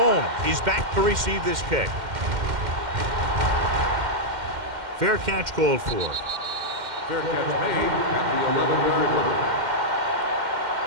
is back to receive this kick. Fair catch called for. Fair catch made at the 11-yard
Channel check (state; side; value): late; left; 2.1 ms